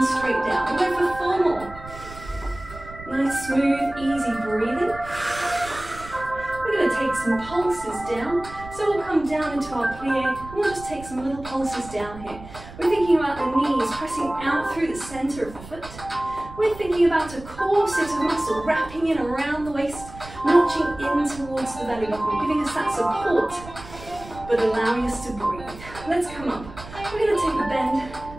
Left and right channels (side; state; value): right; noise; rumble, 16 dB below the sound